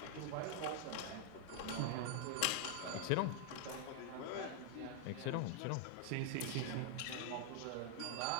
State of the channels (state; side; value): different; both; correlation 0.00